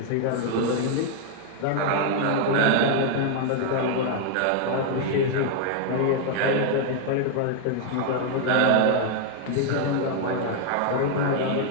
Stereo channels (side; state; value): both; different; correlation 0.00